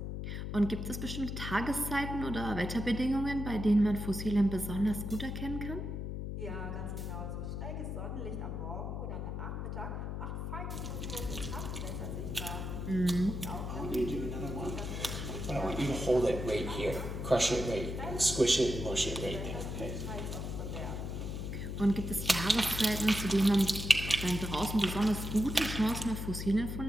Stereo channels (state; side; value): noise; left; hum, 4 dB below the sound